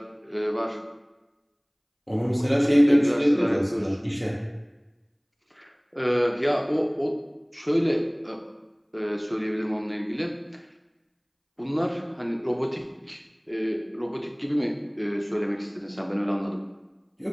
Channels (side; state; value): both; identical; correlation 1.00